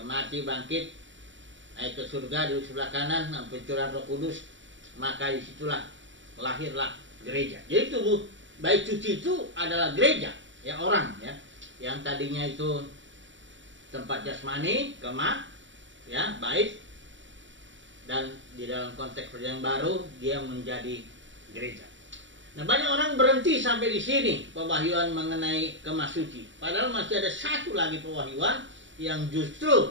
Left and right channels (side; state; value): left; late; 0.55 ms